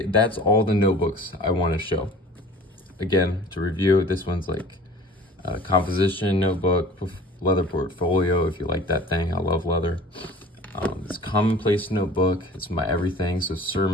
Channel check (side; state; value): both; normal; correlation 0.44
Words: that's all the notebooks I want to show. Again, to review, this one's like a composition notebook, leather portfolio, if you like that thing. I love leather. This Commonplace notebook, it's my everything. So